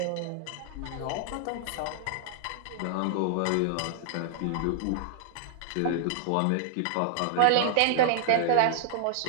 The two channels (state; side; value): different; both; correlation -0.01